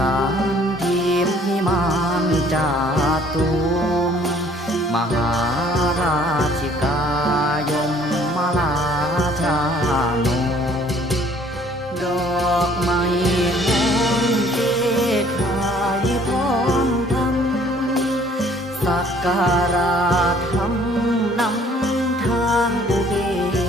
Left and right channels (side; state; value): both; normal; correlation 0.58